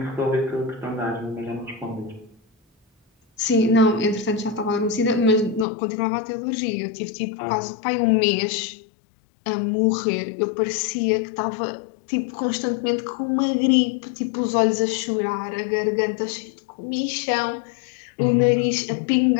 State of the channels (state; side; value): drops out; right; at 5.7 s